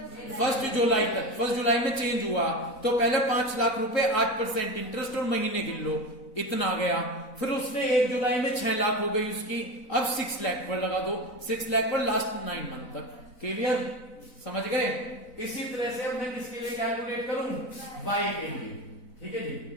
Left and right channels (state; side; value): late; right; 4.0 ms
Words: 1 जुलाई तक। 1 जुलाई में चेंज हुआ तो पहले 5 लाख रुपए 8% इंटरेस्ट और महीने गिन लो, इतना आ गया। फिर उसने 1 जुलाई में 6 लाख हो गई उसकी। अब 6 लाख पर लगा दो, 6 लाख पर लास्ट 9 मंथ तक। क्लियर? समझ गए? इसी तरह से अब मैं किसके लिए कैलकुलेट करूं? वाई के लिए। ठीक है जी,